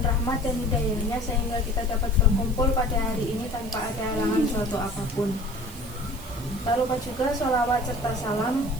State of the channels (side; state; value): right; noise; hiss, 18 dB below the sound